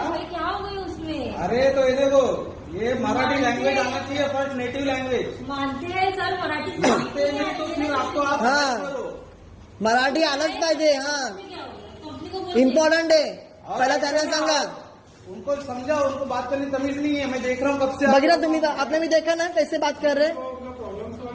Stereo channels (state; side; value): identical; both; correlation 1.00